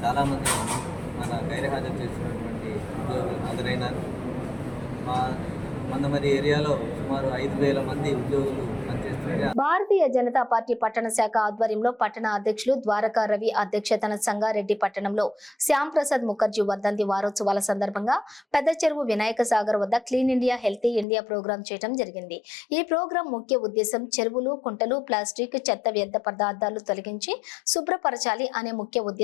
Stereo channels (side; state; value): right; drops out; at 21.1 s